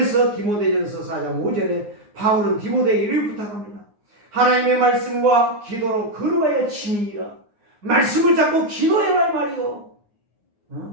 디모데전서 4장 5절에 바울은 디모데에게 이를 부탁합니다. 하나님의 말씀과 기도로 걸어가야 침이니라. 말씀을 잡고 기도해라 말이요.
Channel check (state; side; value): late; left; 9.6 ms